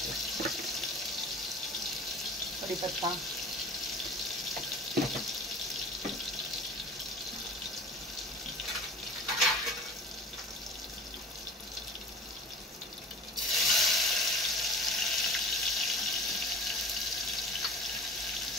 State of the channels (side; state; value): both; normal; correlation 0.41